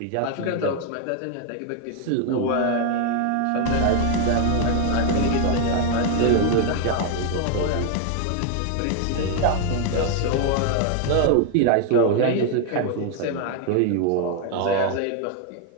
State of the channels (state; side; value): different; both; correlation 0.00